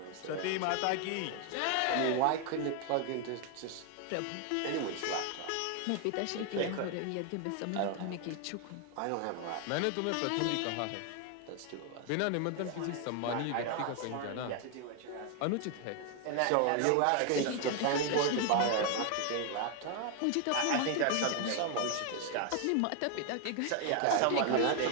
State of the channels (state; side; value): different; both; correlation 0.00